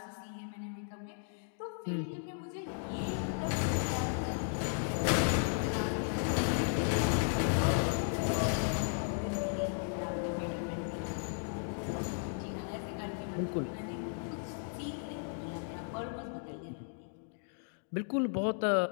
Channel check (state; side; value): silent; right; digital silence